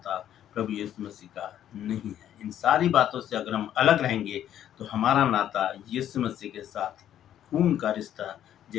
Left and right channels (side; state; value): right; quieter; 10.9 dB